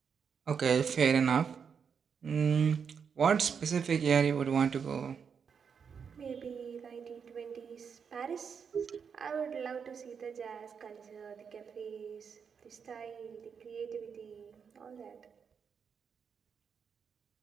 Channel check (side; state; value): left; quieter; 6.6 dB